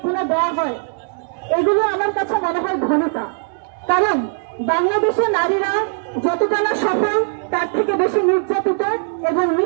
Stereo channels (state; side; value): silent; left; 66 dB below the other